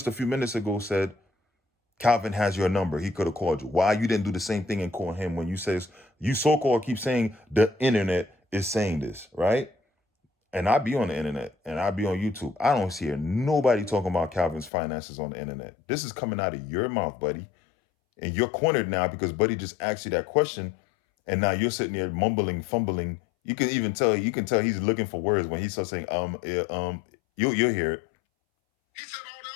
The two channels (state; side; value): drops out; right; at 14.7 s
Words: a few minutes ago said, Calvin has your number. He could have called you. Why you didn't do the same thing and call him when you says, you so-called keep saying the internet is saying this, right? And I be on the internet and I be on YouTube. I don't hear nobody talking about Calvin's finances on the internet. This is coming out of your mouth, buddy. And you're cornered now because buddy just asked you that question. And now you're sitting there mumbling, fumbling. You can tell he's looking for words when he starts saying, you'll hear it. He said all the